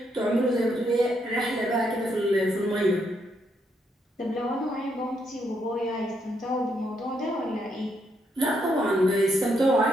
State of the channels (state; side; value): normal; both; correlation 0.76